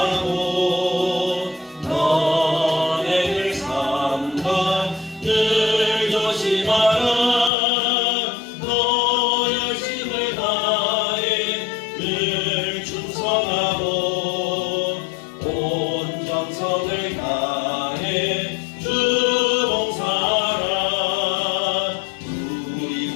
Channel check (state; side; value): drops out; right; at 7.5 s